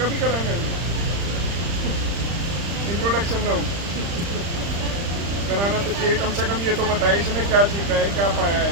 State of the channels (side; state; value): left; late; 35 ms